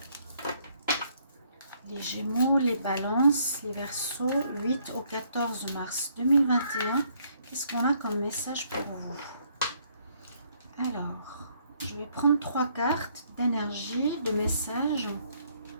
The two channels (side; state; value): both; inverted; correlation -0.68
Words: les balances, les verseaux, 8 au 14 mars 2021. Qu'est-ce qu'on a comme message pour vous? Alors, je vais prendre 3 cartes d'énergie, de messages.